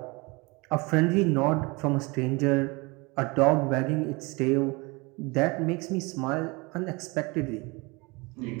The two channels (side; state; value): left; quieter; 26.4 dB